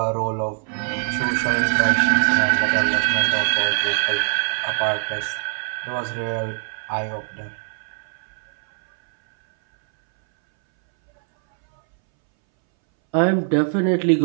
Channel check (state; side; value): silent; left; 62 dB below the other